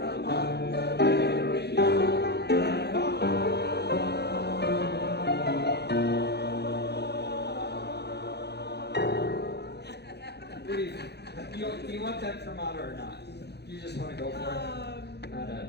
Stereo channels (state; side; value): late; right; 0.48 ms